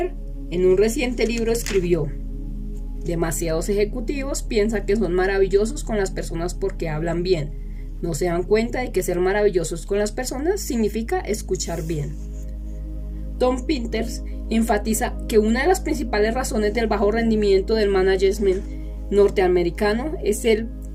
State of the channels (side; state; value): both; identical; correlation 1.00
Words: en un reciente libro, escribió: demasiados ejecutivos piensan que son maravillosos con las personas porque hablan bien. No se dan cuenta de que ser maravillosos con las personas significa escuchar bien. Tom Peters enfatiza que una de las principales razones del bajo rendimiento del management norteamericano es el